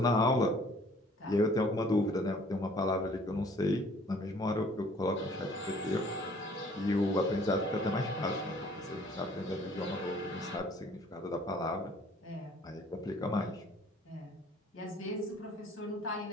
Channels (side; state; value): both; normal; correlation 0.56